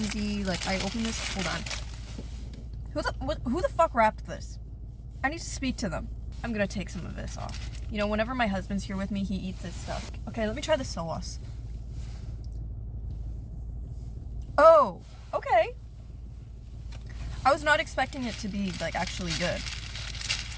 Like, I open this. Hold on. Who the fuck wrapped this? I need to speak to them. I'm gonna take some of this off. You know, whenever my husband's here with me, he eats this stuff. Okay, let me try the sauce. Oh, okay. I was not expecting it to be, like, actually good.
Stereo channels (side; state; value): both; identical; correlation 1.00